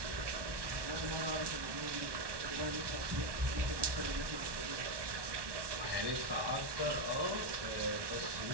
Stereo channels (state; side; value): late; left; 1.1 ms